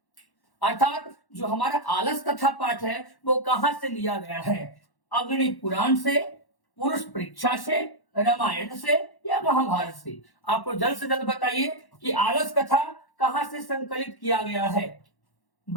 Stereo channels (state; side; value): late; right; 1.1 ms